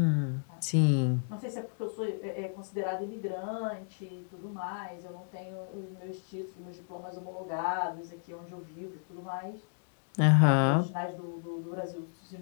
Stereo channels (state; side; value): silent; right; digital silence